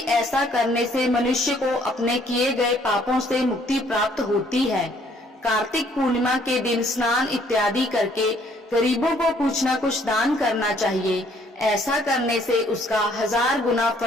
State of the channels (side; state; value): both; normal; correlation 0.63